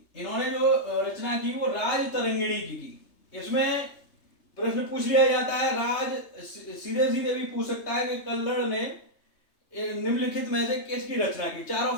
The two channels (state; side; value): late; right; 3.3 ms